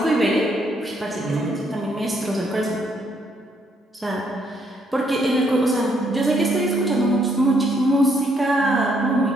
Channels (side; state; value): both; normal; correlation 0.71